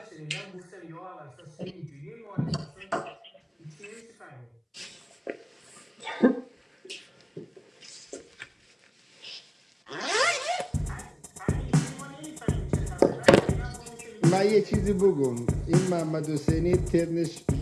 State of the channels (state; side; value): identical; both; correlation 1.00